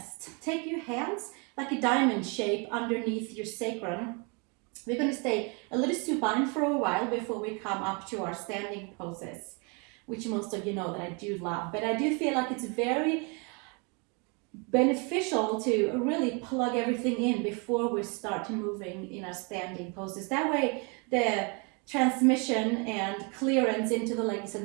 Take your hands like a diamond shape underneath your sacrum. We're going to stay a little supine for a while before we come up to our standing poses, which most of you know that I do love. But I do feel like it's very beneficial to really plug everything in before we start moving in our standing poses. That way the transmission and clearance into the legs and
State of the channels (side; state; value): left; quieter; 32.9 dB